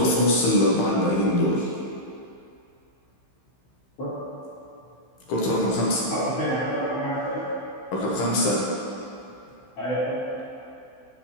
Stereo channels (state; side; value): late; right; 15 ms